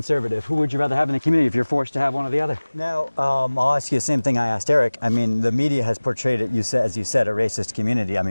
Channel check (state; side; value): inverted; both; correlation -1.00